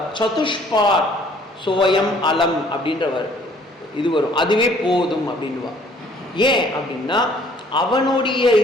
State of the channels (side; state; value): both; normal; correlation 0.59